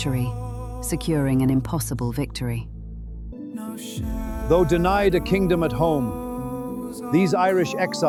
securing an impossible victory. Though denied a kingdom at home, these Irish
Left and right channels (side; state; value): both; identical; correlation 1.00